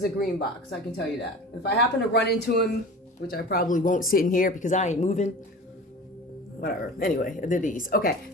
a green box. I can tell you that. If I happen to run into him, which I probably won't sit in here because I ain't moving. Whatever. Anyway, they're these. Okay,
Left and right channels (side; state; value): both; normal; correlation 0.36